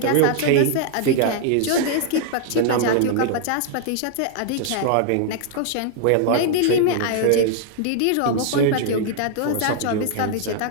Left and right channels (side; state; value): both; different; correlation 0.00